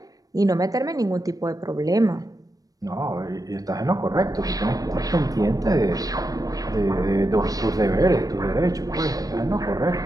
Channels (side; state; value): left; late; 0.18 ms